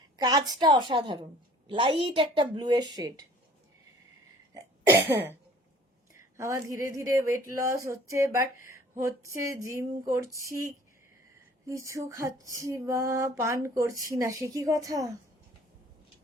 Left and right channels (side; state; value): both; normal; correlation 0.52